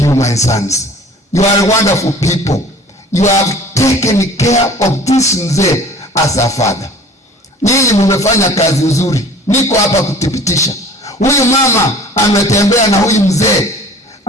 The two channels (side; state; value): both; normal; correlation 0.46